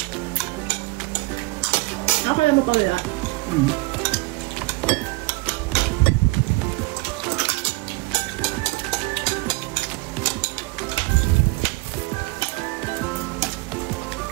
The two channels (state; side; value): quieter; left; 23.7 dB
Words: Nakakala mo pa wala.